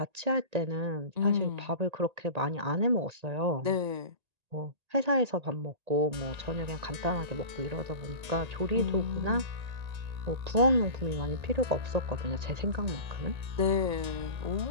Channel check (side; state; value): left; late; 1.8 ms